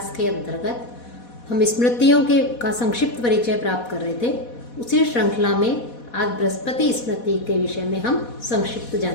के अंतर्गत हम स्मृतियों का संक्षिप्त परिचय प्राप्त कर रहे थे। उसी श्रृंखला में आज बृहस्पति स्मृति के विषय में हम संक्षिप्त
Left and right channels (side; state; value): right; late; 4.1 ms